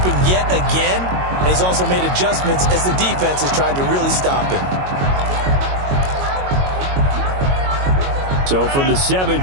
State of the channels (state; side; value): late; left; 22 ms